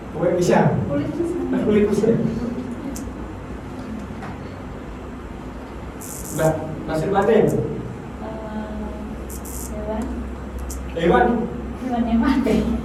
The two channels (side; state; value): both; identical; correlation 1.00